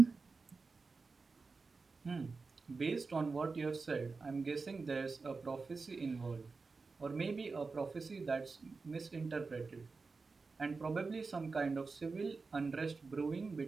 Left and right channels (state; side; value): quieter; left; 4.3 dB